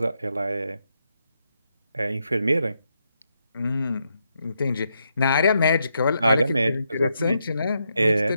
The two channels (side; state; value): both; inverted; correlation -0.81